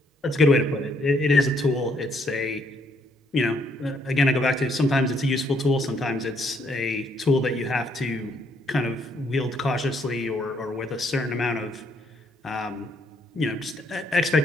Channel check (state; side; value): normal; both; correlation 0.70